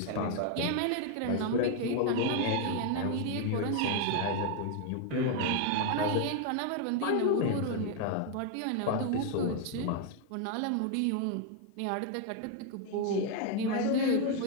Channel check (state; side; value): different; both; correlation 0.00